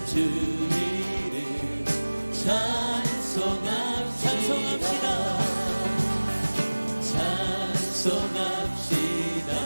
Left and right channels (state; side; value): inverted; both; correlation -1.00